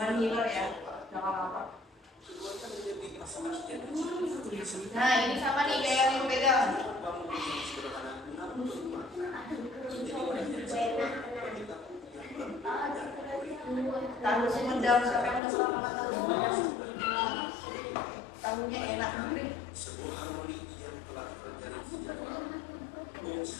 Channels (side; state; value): right; drops out; at 15.4 s